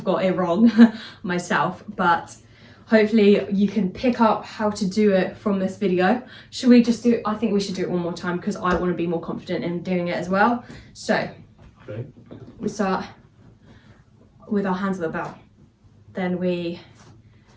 got it wrong myself, but hopefully you can pick up how to do it from this video. Should we just do it? I think we should do it one more time because I want to be more confident in doing it as well. So Okay. we start with our hands at the belt. Then we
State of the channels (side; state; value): both; identical; correlation 1.00